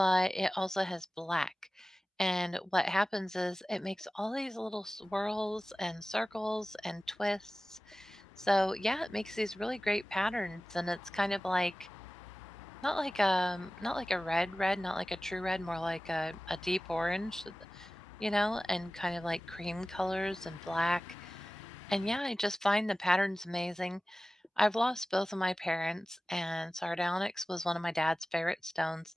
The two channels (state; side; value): normal; both; correlation 0.97